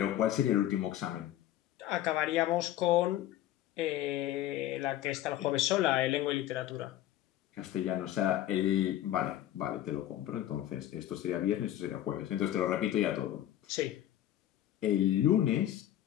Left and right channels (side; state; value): right; quieter; 12.8 dB